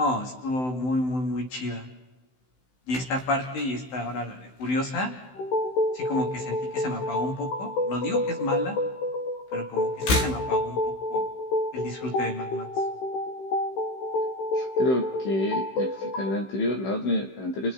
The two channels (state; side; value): late; right; 16 ms